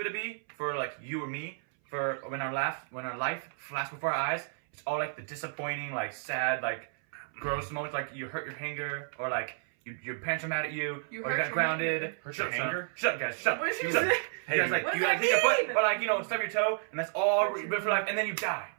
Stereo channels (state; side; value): silent; left; 57 dB below the other